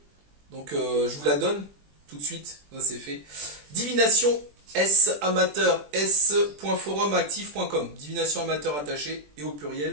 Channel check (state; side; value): late; left; 20 ms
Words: Donc je vous la donne tout de suite, ça c'est fait. Divination S amateur s.forumactif.com. Divination amateur attaché et au